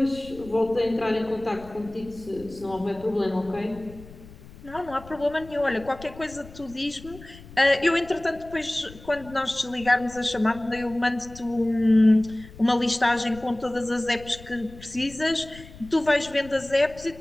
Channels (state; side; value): noise; left; rumble, 19 dB below the sound